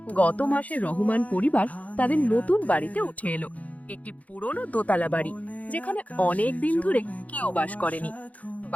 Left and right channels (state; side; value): late; right; 0.070 ms